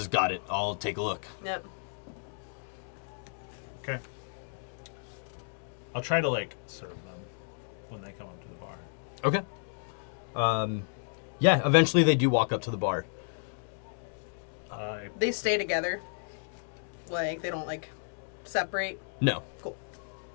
"Got it. I'll take a look." Yep. Okay. I'll try to like serve them when they come up to the bar. Okay. Yeah, eventually they do walk up to the bar. They stay together. Like, they don't, like, separate. No. Cool.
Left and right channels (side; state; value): right; silent; digital silence